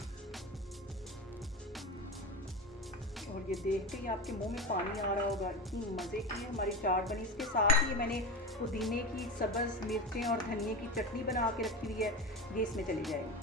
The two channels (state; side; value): normal; both; correlation 0.23